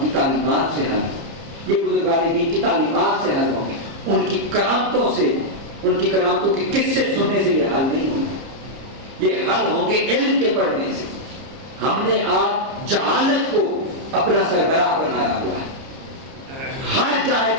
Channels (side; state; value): left; late; 30 ms